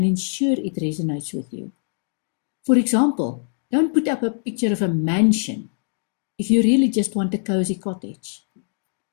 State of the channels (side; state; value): right; silent; digital silence